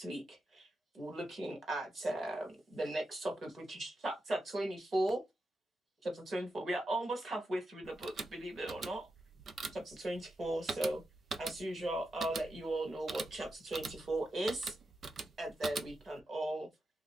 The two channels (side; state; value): both; normal; correlation 0.88